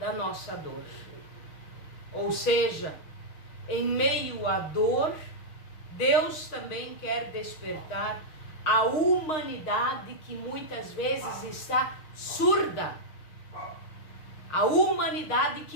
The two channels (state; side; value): late; right; 6.4 ms